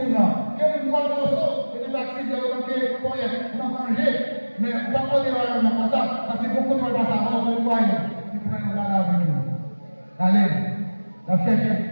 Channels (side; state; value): both; inverted; correlation -1.00